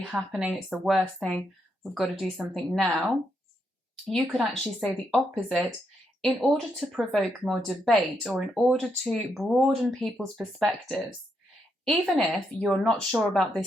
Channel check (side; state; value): both; normal; correlation 0.79